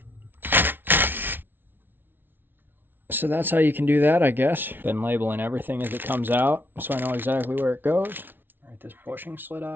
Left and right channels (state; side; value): late; left; 0.099 ms